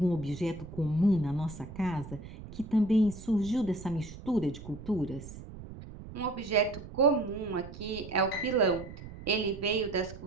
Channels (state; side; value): noise; right; rumble, 14 dB below the sound